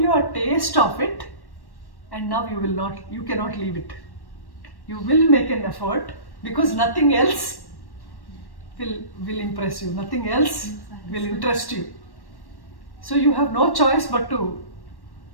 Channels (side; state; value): right; late; 1.1 ms